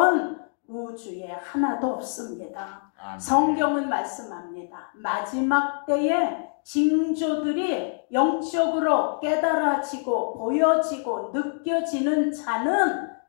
우주에 하나도 없습니다. 아멘. 성경은 말씀합니다. 마지막 때에 징조들이 영적으로 깨달아지고 보여지고 느껴지는 자는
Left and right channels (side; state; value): right; silent; digital silence